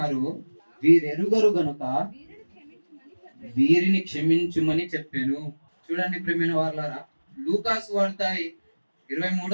వీరెరుగరు గనుక వీరిని క్షమించుమని చెప్పాను. చూడండి ప్రియమైన వారలారా, లూకాసు వార్త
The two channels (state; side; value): inverted; both; correlation -1.00